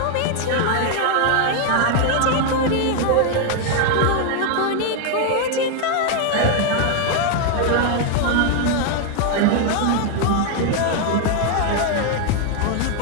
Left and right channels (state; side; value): different; both; correlation 0.00